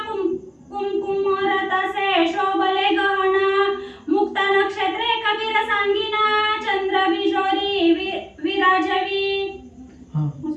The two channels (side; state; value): both; identical; correlation 1.00